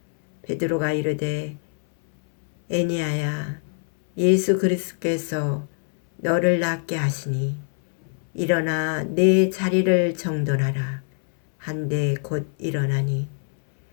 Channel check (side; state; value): right; silent; 63 dB below the other